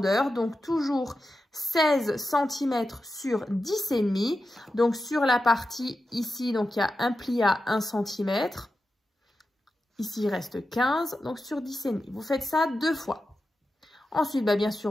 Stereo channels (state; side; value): normal; both; correlation 0.91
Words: Donc, toujours 16 cm sur 10,5. Donc, sur la partie ici, donc il y a un pli à 1 cm. Ici, il reste 15, donc sur 10,5. Vous faites ça 2 fois. Ensuite, bien